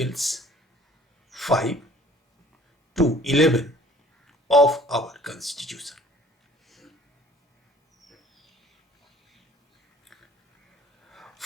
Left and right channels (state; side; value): normal; both; correlation 0.53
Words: 5 to 11 of our Constitution.